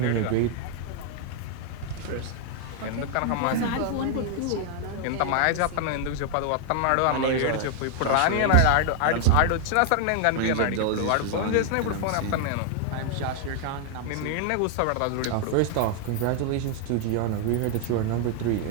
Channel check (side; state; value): both; different; correlation 0.00